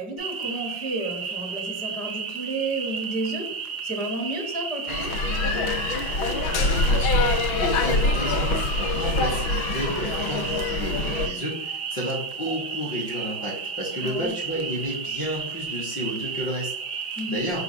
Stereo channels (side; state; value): right; late; 6.1 ms